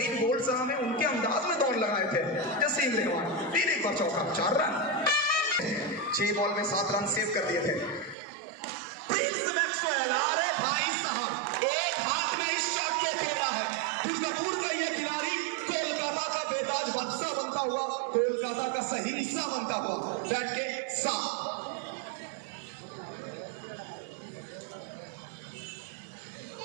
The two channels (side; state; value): left; drops out; at 8.2 s